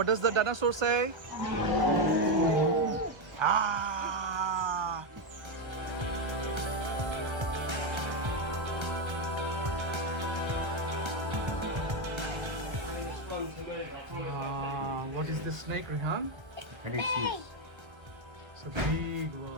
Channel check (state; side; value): late; left; 1.3 ms